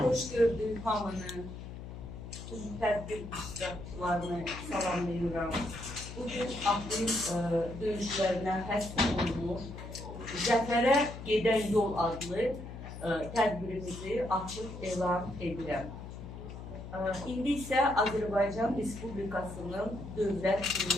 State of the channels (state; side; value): noise; left; hum, 11 dB below the sound